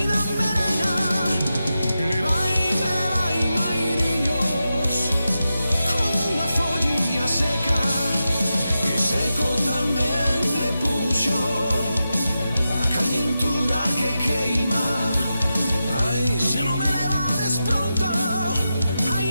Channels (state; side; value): inverted; both; correlation -0.90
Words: Levai, mairiños, como unha follilla seca, e seco tamén me puxo a calentura que queima. Ai, se non me levades pronto,